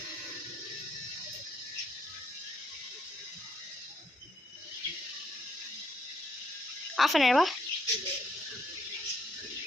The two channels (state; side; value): normal; both; correlation 0.71